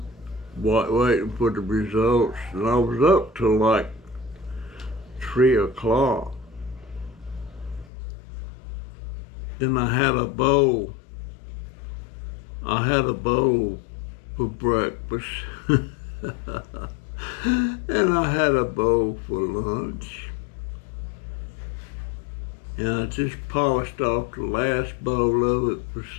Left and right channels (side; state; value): right; drops out; at 7.9 s